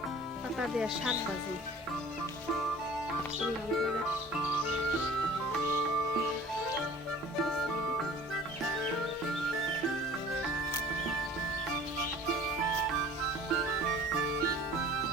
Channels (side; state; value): both; normal; correlation 0.46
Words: পাতা দিয়ে শাক ভাজি।